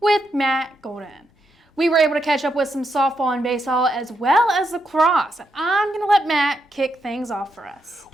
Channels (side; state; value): both; normal; correlation 0.81